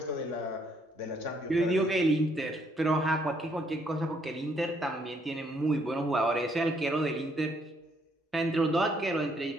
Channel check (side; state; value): both; normal; correlation 0.69